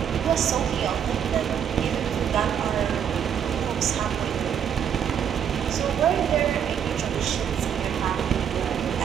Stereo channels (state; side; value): quieter; left; 8.6 dB